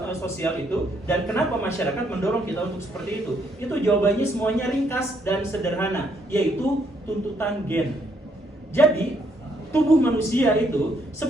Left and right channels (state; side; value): normal; both; correlation 0.71